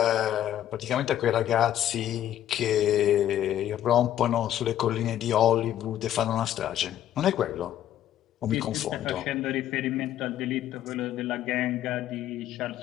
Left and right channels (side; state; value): right; quieter; 11.7 dB